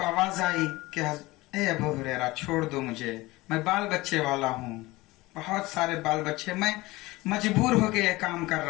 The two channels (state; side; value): quieter; right; 20.3 dB